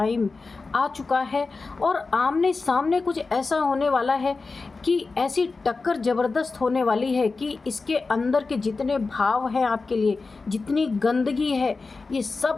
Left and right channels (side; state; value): right; quieter; 4.0 dB